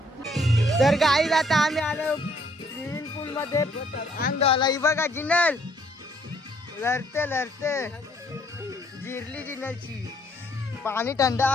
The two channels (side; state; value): both; normal; correlation 0.65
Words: तर गाईज आता आम्ही आलो स्विमिंग पूल मध्ये अंगाला. ही बघा जिनल लढते जिरली जिनलची. पाणी थंड